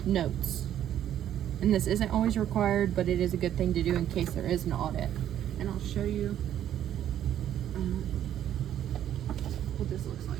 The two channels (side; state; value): left; quieter; 10.9 dB